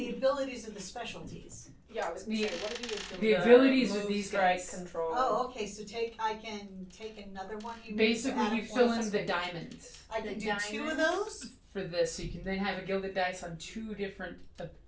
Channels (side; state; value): both; identical; correlation 1.00